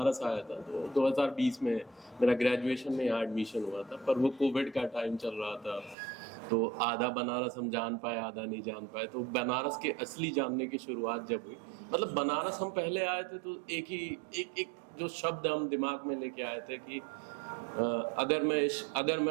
आया था तो 2020 में मेरा ग्रेजुएशन में यहाँ एडमिशन हुआ था, पर वो कोविड का टाइम चल रहा था, तो आधा बनारस हम जान पाए, आधा नहीं जान पाए। तो बनारस के असली जानने की शुरुआत जब हुई, मतलब बनारस हम पहले आए थे तो एक जो शब्द हम दिमाग में लेके आए थे कि अगर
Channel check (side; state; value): left; drops out; at 6.0 s